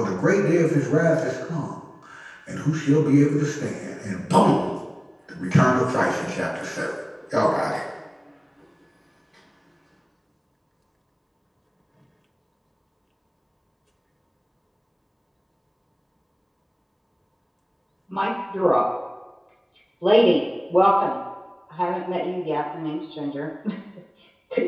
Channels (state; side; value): identical; both; correlation 1.00